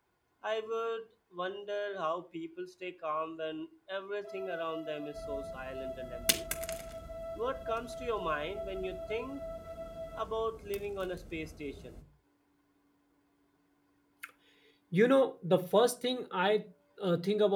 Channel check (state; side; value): identical; both; correlation 1.00